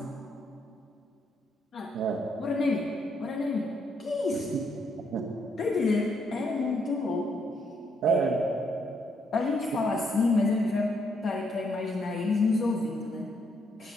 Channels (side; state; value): both; normal; correlation 0.74